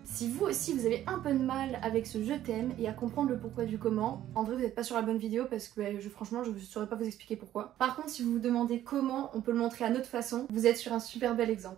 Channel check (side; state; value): left; quieter; 12.5 dB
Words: Si vous aussi vous avez un peu de mal avec ce je t'aime et à comprendre le pourquoi du comment, en vrai vous n'êtes pas sur la bonne vidéo parce que franchement je ne saurais pas vous expliquer pourquoi. Par contre si vous vous demandez comment on peut le montrer à notre façon, vous êtes sur un super bel